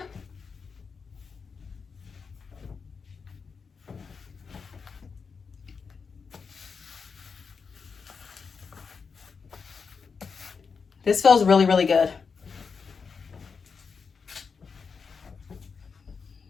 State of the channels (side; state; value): right; quieter; 5.4 dB